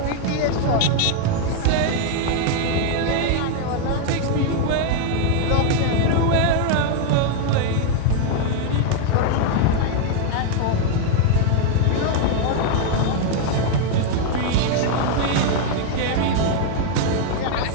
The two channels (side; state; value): both; different; correlation 0.00